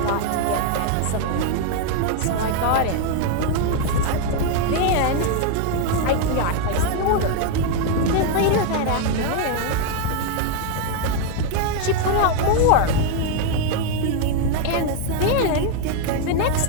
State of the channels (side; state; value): both; different; correlation 0.01